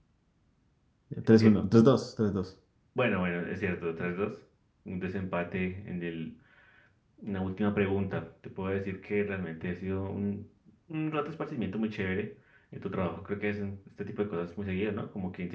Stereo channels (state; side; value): identical; both; correlation 1.00